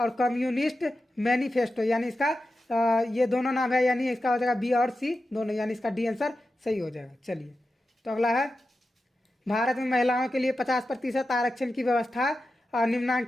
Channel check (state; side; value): normal; both; correlation 0.91